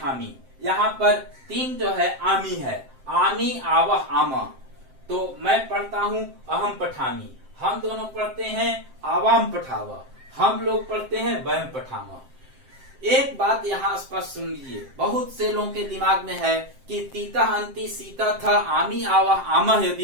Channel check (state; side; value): late; left; 7.6 ms